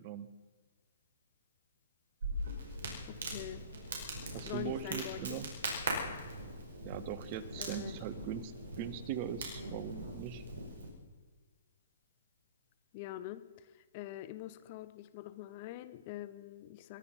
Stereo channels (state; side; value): inverted; both; correlation -0.37